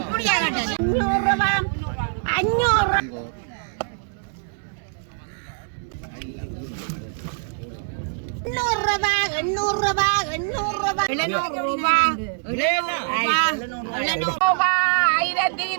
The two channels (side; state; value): left; silent; 63 dB below the other